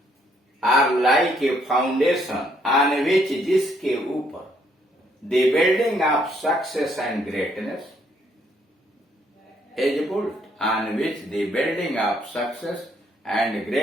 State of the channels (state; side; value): normal; both; correlation 0.69